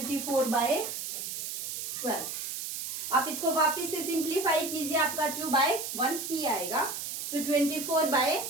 आप इसको वापस से सिंप्लीफाई कीजिए, आपका 2/1 ही आएगा। सो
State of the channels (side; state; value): right; noise; hiss, 5 dB below the sound